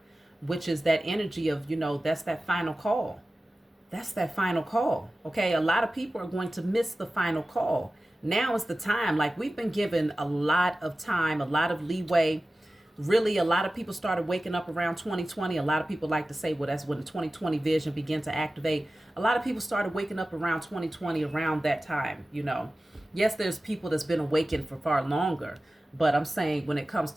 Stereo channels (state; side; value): normal; both; correlation 0.96